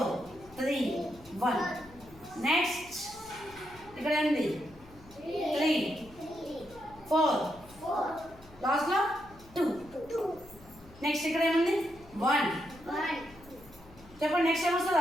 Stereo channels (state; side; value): noise; left; hum, 23 dB below the sound